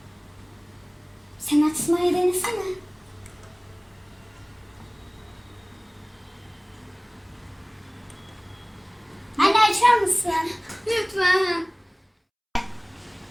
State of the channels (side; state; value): both; identical; correlation 1.00